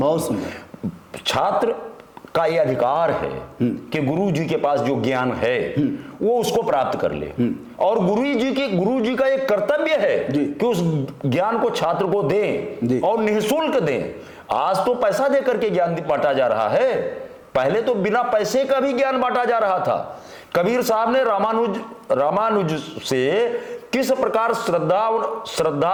छात्र का यह अधिकार है कि गुरु जी के पास जो ज्ञान है वो उसको प्राप्त कर ले, और गुरु जी का एक कर्तव्य है कि उस ज्ञान को छात्र को दें और निःशुल्क दें। आज तो पैसा देकर के ज्ञान बांटा जा रहा है, पहले तो बिना पैसे का भी ज्ञान बांटा जा रहा था। कबीर साहब ने रामानुज से किस प्रकार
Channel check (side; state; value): both; identical; correlation 1.00